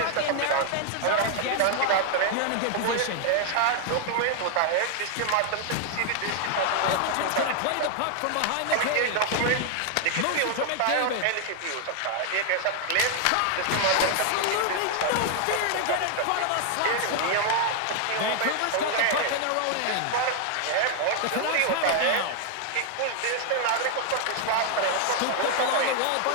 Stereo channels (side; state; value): both; different; correlation 0.00